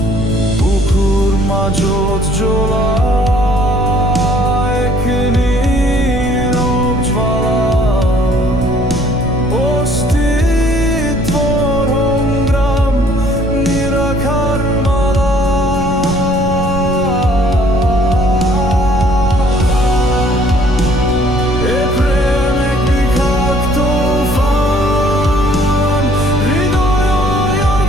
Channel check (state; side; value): noise; right; rumble, 7 dB below the sound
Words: বুকুৰ মাজত জ্বলা